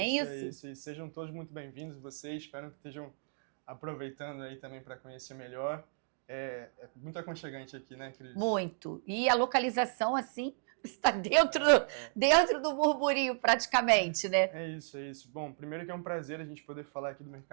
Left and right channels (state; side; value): silent; left; digital silence